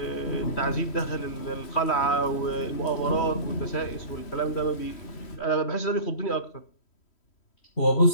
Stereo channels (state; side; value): late; right; 3.1 ms